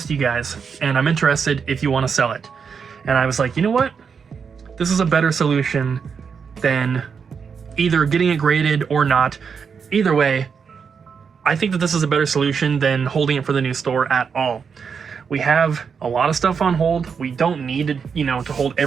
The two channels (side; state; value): left; quieter; 6.2 dB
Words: you guys, and I'm interested if you want to sell it. And I was like, you know what? This is a better solution than either getting it graded or not. Either way, I think that this is a better solution than holding it for the new store at all. We have a lot of stuff on hold. We don't need to, to hold